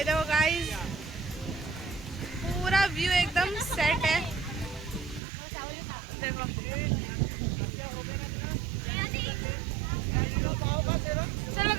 देखो गाइस पूरा व्यू एकदम सेट है। देखो चलो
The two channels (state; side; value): drops out; left; at 5.2 s